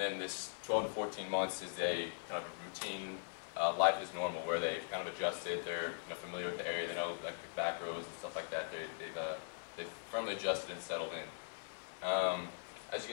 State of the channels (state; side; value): silent; right; 51 dB below the other